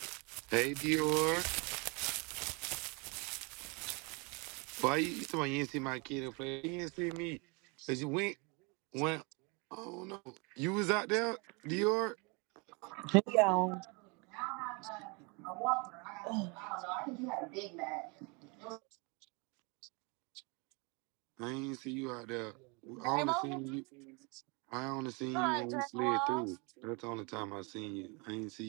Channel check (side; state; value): left; quieter; 30.8 dB